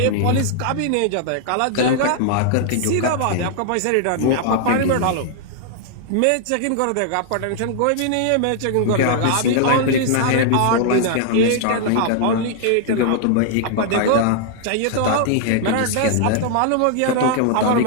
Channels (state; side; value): different; both; correlation -0.01